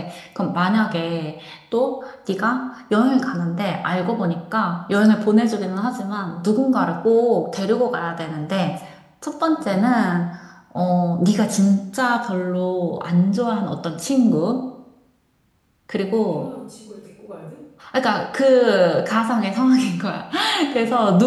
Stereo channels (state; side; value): identical; both; correlation 1.00